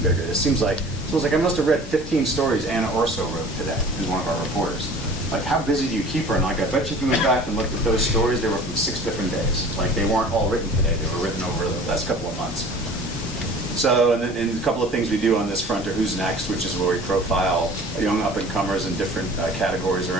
bigger. It seems like I must have read 15 stories Anna Orso wrote today, who's one of our reporters. How busy do you keep her? And I bet you if you went back and looked at those stories, they were from 6 different days. They weren't all written today. They were written over the last couple of months. So, and a couple of things we do on this front are Who's Next, which is where we profile young up-and-comers in different categories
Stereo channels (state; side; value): normal; both; correlation 0.45